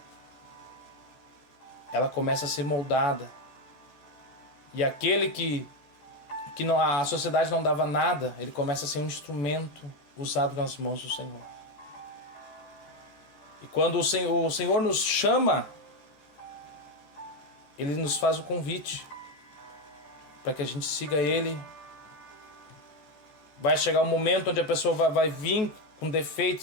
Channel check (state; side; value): late; right; 14 ms